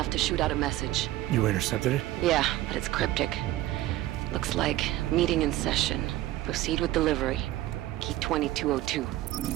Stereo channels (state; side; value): quieter; left; 15.5 dB